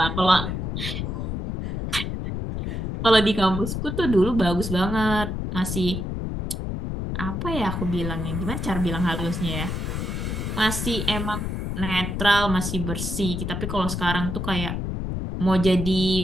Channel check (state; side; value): noise; left; rumble, 3 dB below the sound